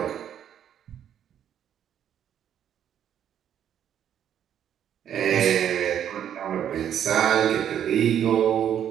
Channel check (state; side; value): quieter; left; 9.7 dB